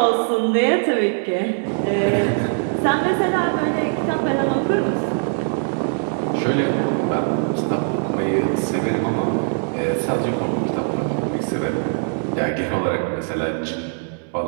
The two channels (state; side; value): silent; left; 65 dB below the other